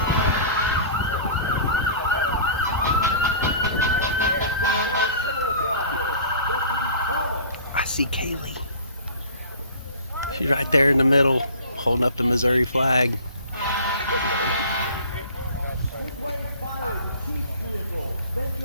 see Kaylee. She's right there in the middle, holding up the Missouri flag.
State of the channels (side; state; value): both; inverted; correlation -0.43